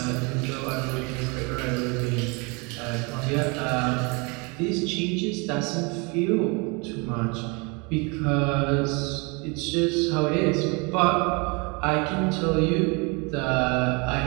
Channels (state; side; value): quieter; left; 29.9 dB